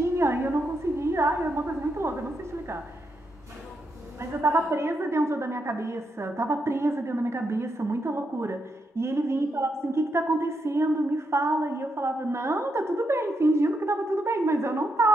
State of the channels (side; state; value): both; normal; correlation 0.81